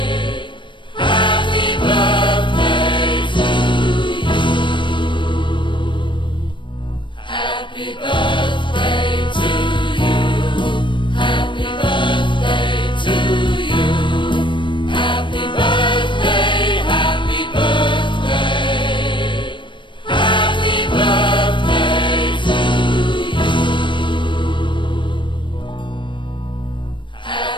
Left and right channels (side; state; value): right; late; 0.23 ms